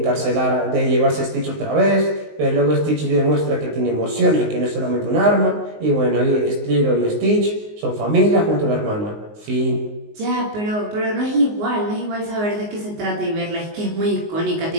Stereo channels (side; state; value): left; late; 19 ms